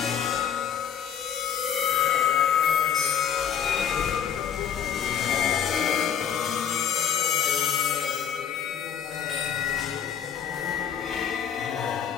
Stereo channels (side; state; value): right; quieter; 8.4 dB